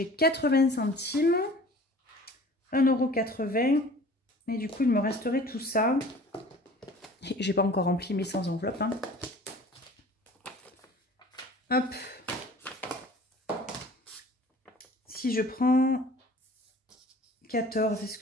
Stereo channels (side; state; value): both; normal; correlation 0.46